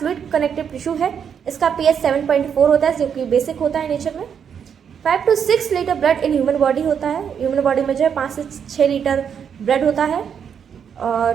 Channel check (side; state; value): left; quieter; 7.6 dB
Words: कनेक्टिव टिश्यू है। इसका पीएच 7.4 होता है, जो कि बेसिक होता है नेचर में। 5 to 6 litre blood in human body होता है। ह्यूमन बॉडी में जो है 5 से 6 लीटर ब्लड होता है। और